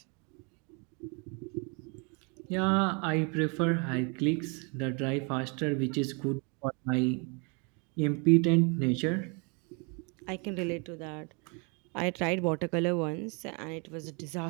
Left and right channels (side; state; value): left; quieter; 33.7 dB